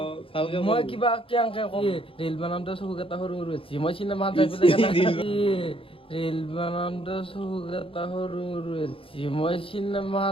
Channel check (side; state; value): right; late; 0.26 ms